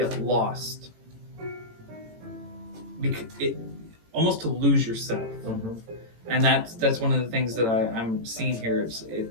lost, almost to lose yourself. And that's one of the things that I'm seeing here.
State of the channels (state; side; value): late; left; 18 ms